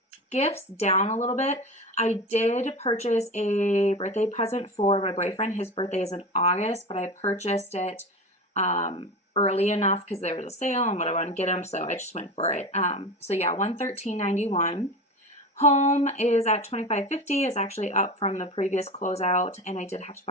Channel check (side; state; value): both; normal; correlation 0.27